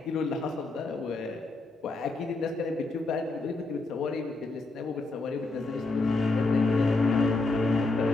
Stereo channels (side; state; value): right; quieter; 3.3 dB